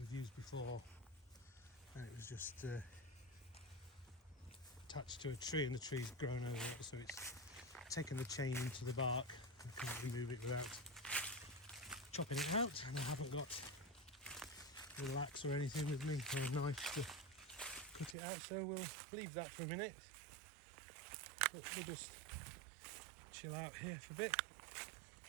used before, and it was just attached to a tree, and the tree's grown over it, so it's taken the chain into the bark. I can't remove it without chopping it out, and I haven't got a little axe or anything with me, or a knife to cut it out, so we'll leave that for a minute. But we'll just chill out here for a bit.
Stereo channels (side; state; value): left; drops out; at 18.2 s